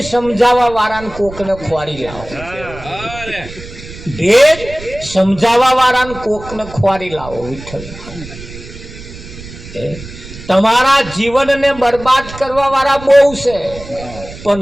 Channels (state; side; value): noise; right; rumble, 15 dB below the sound